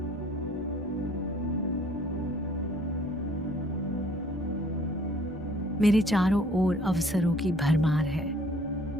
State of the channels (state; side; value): normal; both; correlation 0.57